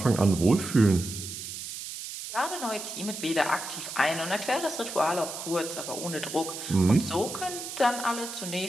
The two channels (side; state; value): right; noise; hiss, 8 dB below the sound